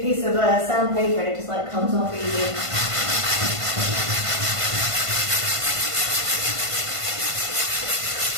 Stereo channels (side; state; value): left; late; 1.5 ms